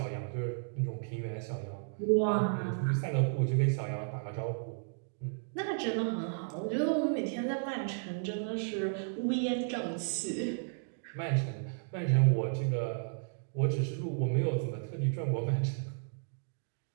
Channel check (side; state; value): left; silent; digital silence